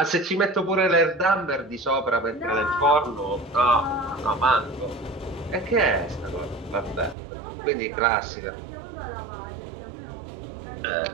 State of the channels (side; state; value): left; drops out; at 7.2 s